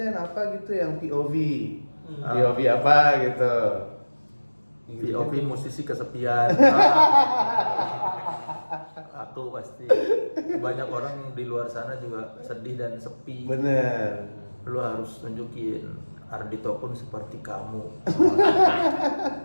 apa gitu yang POV POV apa gitu. POV musisi kesepian. Aku pasti banyak orang di luar sana juga sedih dan sepi. Bener. Lu harus tunjukin Ardito pun seperti kamu.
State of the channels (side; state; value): both; inverted; correlation -1.00